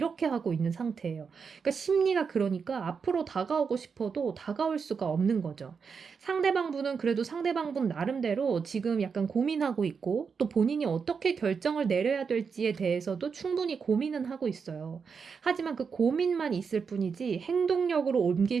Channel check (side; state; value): left; quieter; 5.8 dB